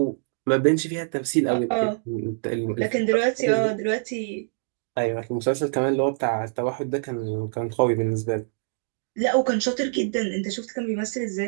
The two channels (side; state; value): left; silent; digital silence